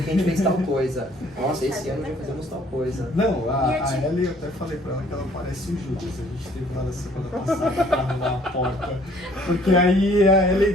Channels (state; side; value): normal; both; correlation 0.59